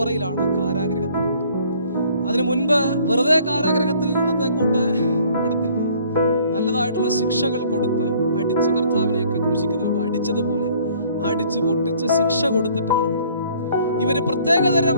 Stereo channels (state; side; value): inverted; both; correlation -0.58